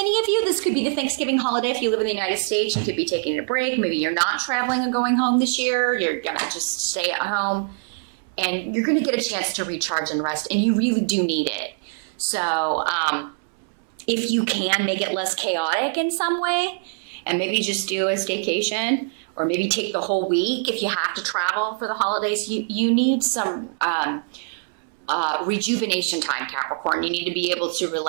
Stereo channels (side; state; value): left; silent; 63 dB below the other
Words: of you, this could be the Thanksgiving holiday. If you live in the United States, you could be taking a break. Maybe you're not traveling and going home this year. You're going to just stay at home. And you're going to get a chance to recharge and rest, and you really do need it. So if you can make it less chaotic in some way, and maybe just do a staycation, or maybe take the whole week if you have to travel for the holidays, you need some rejuvenation time, Capricorn. You need to be able to